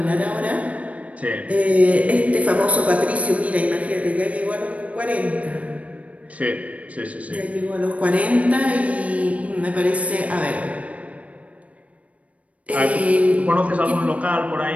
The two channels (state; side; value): late; left; 0.066 ms